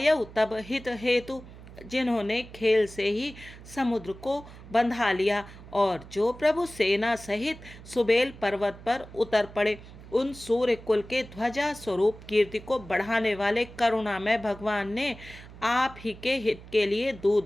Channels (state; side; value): noise; right; hum, 17 dB below the sound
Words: तब हित हेतु। जिन्होंने खेल से ही समुद्र को बंधा लिया, और जो प्रभु सेना सहित सुबेल पर्वत पर उतर पड़े। उन सूर्य कुल के ध्वजा स्वरूप कीर्ति को बढ़ाने वाले करुणामय भगवान ने आप ही के हित के लिए